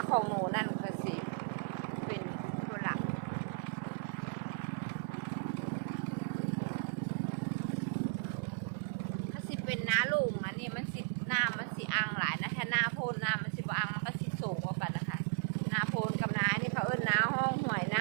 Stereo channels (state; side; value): silent; left; 54 dB below the other